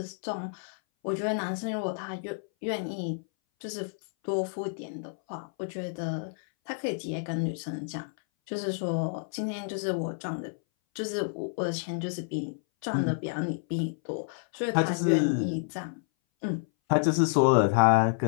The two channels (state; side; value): silent; right; 58 dB below the other